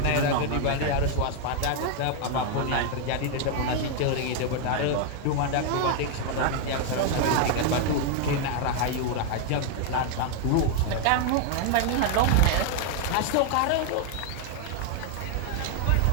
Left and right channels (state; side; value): different; both; correlation 0.00